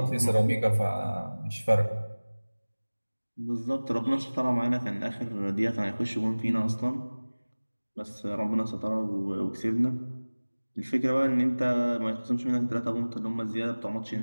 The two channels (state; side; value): inverted; both; correlation -1.00